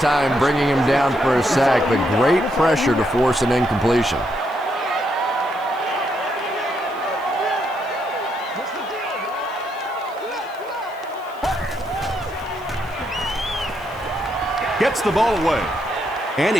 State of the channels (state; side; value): noise; right; hiss, 26 dB below the sound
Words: time, bringing him down for a sack, but great pressure to force an incompletion. Gets the ball away, and he